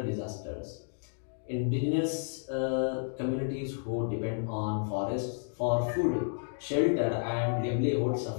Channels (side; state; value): right; silent; digital silence